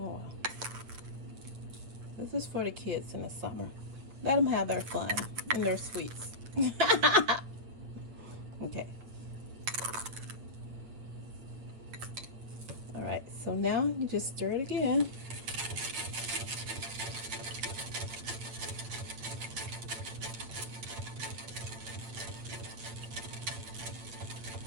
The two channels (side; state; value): left; late; 8.6 ms